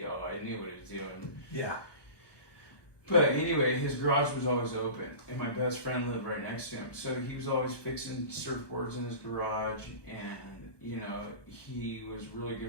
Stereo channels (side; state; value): right; late; 1.2 ms